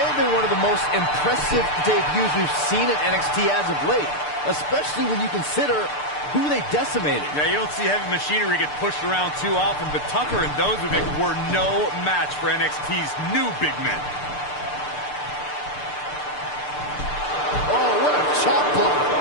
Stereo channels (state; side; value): late; right; 6.8 ms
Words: have been one of the most impressive debuts we've seen in NXT as of late, especially when you consider who they decimated. Yeah, you don't see heavy machinery get pushed around too often, but Tucker and Dozovic were no match for NXT's new big men. Oh, what a chop block.